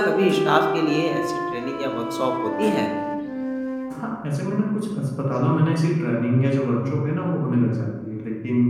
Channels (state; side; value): identical; both; correlation 1.00